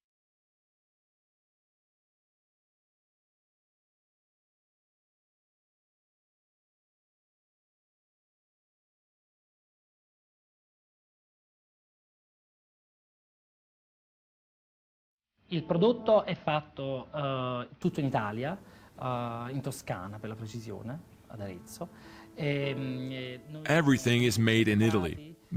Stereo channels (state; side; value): identical; both; correlation 1.00